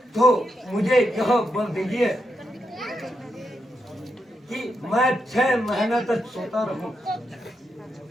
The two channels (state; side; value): normal; both; correlation 0.83